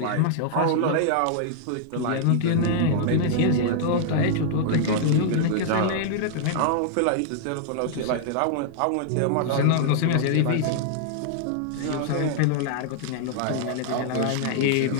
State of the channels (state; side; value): different; both; correlation -0.01